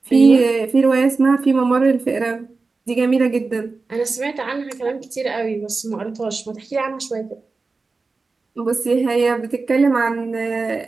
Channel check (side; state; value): left; quieter; 4.0 dB